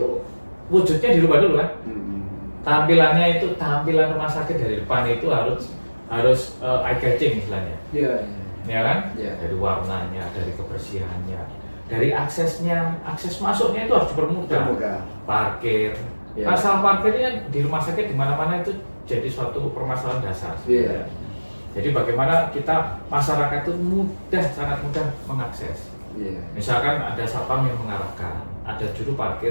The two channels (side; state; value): both; inverted; correlation -1.00